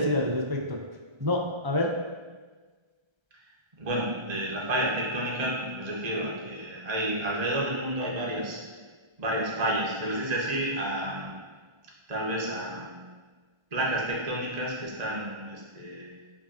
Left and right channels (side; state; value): left; late; 1.3 ms